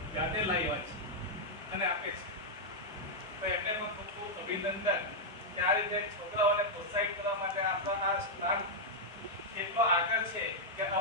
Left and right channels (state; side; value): normal; both; correlation -0.04